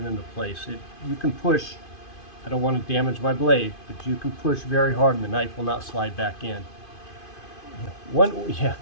into place. You can push, I don't want to damage my blade, but you can push very hard and the knife will not slide back in.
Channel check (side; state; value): right; late; 2.5 ms